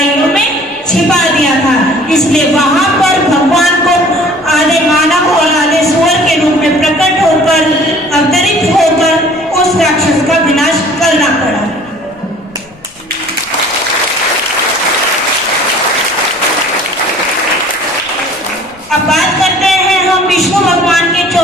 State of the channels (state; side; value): noise; left; rumble, 28 dB below the sound